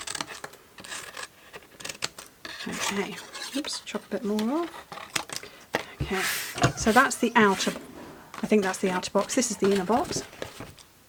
Okay, oops, chop a bit more off. Okay, so that's the outer, I think that's the outer box. This is the inner box.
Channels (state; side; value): identical; both; correlation 1.00